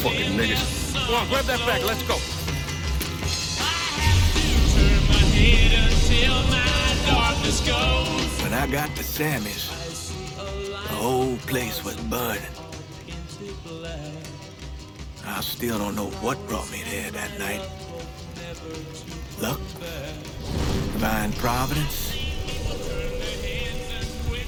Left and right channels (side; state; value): both; identical; correlation 1.00